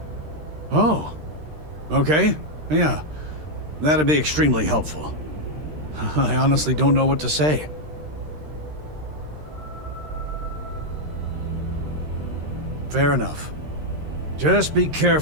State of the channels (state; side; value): late; left; 13 ms